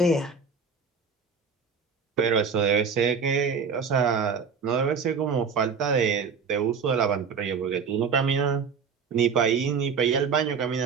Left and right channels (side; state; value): left; quieter; 5.7 dB